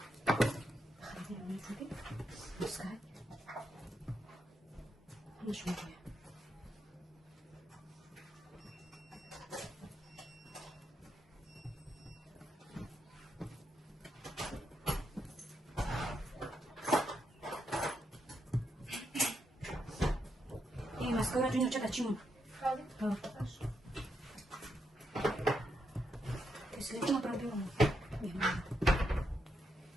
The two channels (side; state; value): both; normal; correlation 0.81